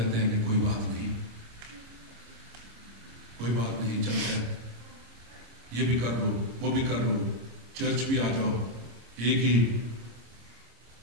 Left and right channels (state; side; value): late; left; 26 ms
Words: ہیں کہ کوئی بات نہیں چلتا ہے, یہ بھی کر لو, وہ بھی کر لو, چرچ بھی آ جاؤ, ایک ہی